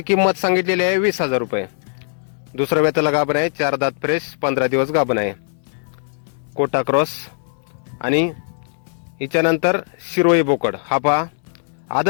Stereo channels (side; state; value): right; silent; digital silence